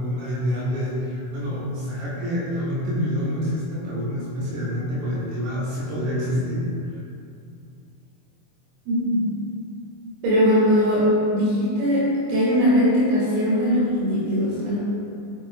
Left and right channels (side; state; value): left; late; 24 ms